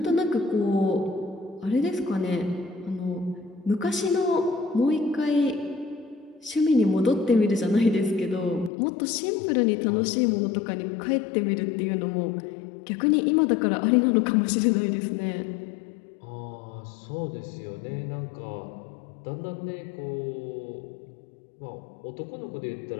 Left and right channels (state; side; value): drops out; right; at 8.7 s